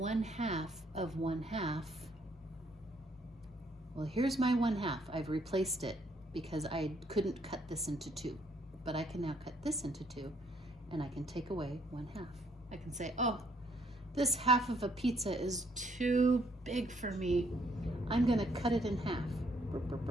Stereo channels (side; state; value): both; normal; correlation 0.68